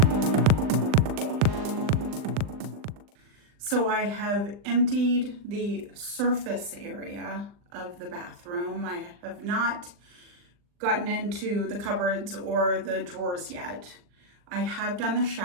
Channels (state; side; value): late; left; 39 ms